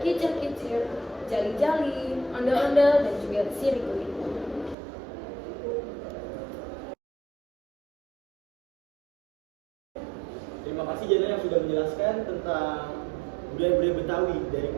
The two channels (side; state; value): left; drops out; at 4.8 s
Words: Jali-Jali, Ondel-Ondel, dan juga Sirih Kulit. Terima kasih Jana yang sudah menjelaskan tentang budaya-budaya Betawi, dari